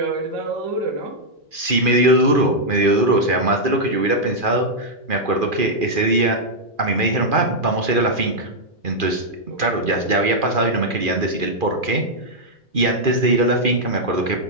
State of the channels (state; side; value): late; left; 2.4 ms